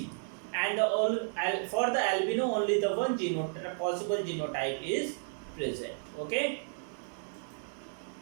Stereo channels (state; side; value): silent; left; 56 dB below the other